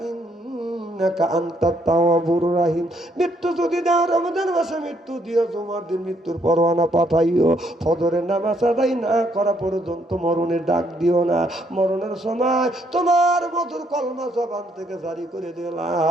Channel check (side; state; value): both; normal; correlation 0.71